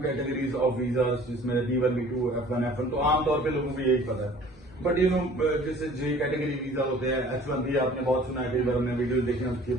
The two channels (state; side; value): normal; both; correlation 0.50